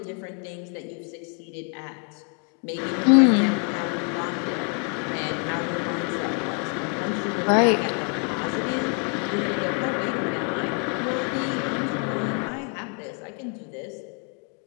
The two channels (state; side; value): quieter; right; 39.2 dB